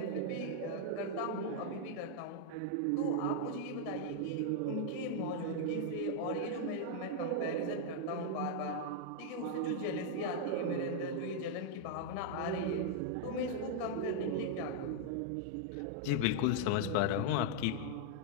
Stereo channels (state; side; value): different; both; correlation -0.01